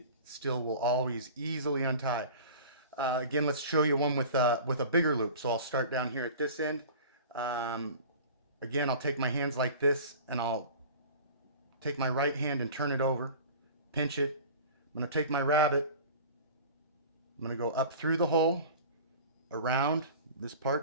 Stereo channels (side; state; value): both; inverted; correlation -0.39